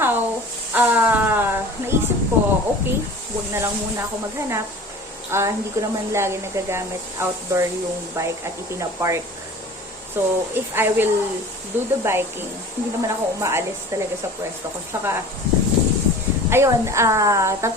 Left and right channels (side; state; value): both; normal; correlation 0.41